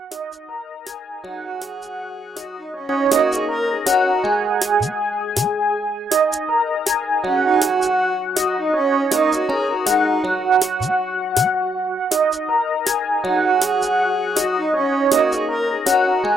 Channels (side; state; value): both; normal; correlation 0.77